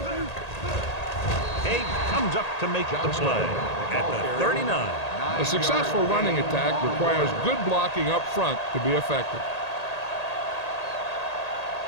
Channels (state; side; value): late; right; 1.8 ms